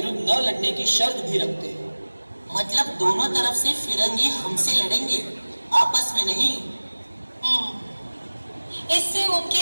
न लड़ने की शर्त भी रखते हैं। मतलब दोनों तरफ से फिरंगी हमसे लड़ेंगे, आपस में नहीं। इससे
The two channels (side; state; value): both; inverted; correlation -1.00